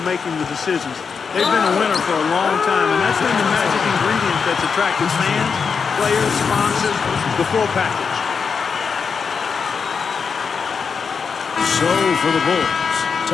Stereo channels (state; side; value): quieter; right; 5.8 dB